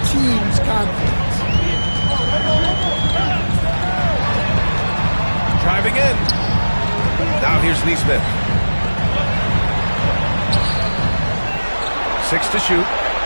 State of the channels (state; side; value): inverted; both; correlation -1.00